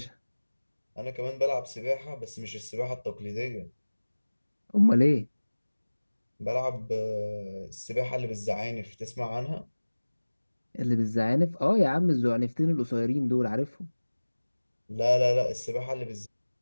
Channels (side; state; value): both; inverted; correlation -1.00